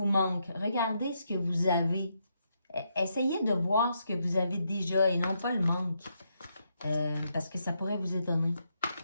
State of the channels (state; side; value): inverted; both; correlation -0.80